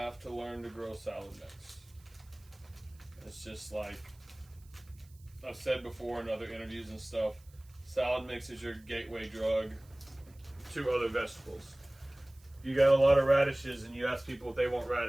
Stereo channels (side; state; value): right; noise; hiss, 28 dB below the sound